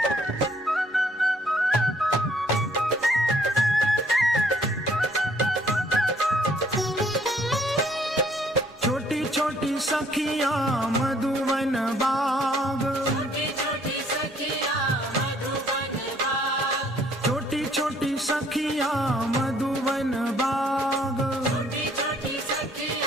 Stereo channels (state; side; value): normal; both; correlation 0.63